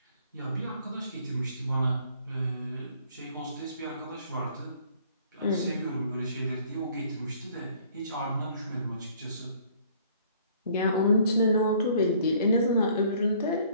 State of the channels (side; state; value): both; inverted; correlation -0.58